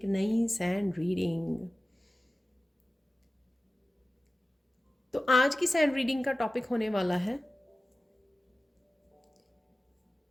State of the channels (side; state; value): both; normal; correlation 0.95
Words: नई सैंड रीडिंग। तो आज की सैंड रीडिंग का टॉपिक होने वाला है